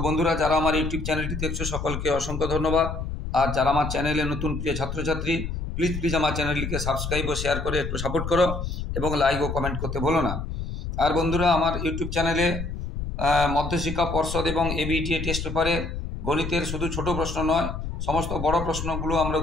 বন্ধুরা যারা আমার ইউটিউব চ্যানেলটি দেখছো সকলকে অসংখ্য ধন্যবাদ। আর যারা আমার চ্যানেলে নতুন প্রিয় ছাত্রছাত্রী, প্লিজ আমার চ্যানেলটিকে সাবস্ক্রাইব ও শেয়ার করে একটু সাপোর্ট করো এবং লাইক ও কমেন্ট করতে ভুলো না। আর বন্ধুরা আমার ইউটিউব চ্যানেলে মধ্যশিক্ষা পর্ষদ এবং এবিটিএ টেস্ট পেপারে গণিতের শুধু ছোট প্রশ্ন নয়, সমস্ত বড় প্রশ্নগুলো আমরা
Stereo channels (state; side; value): noise; left; rumble, 5 dB below the sound